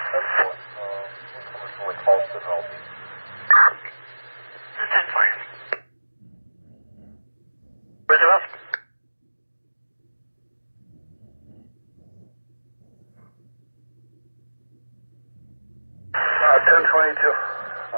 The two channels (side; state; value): both; inverted; correlation -1.00